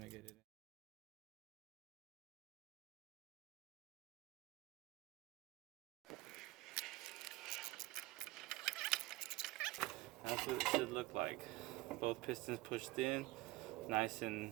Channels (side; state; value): left; quieter; 19.5 dB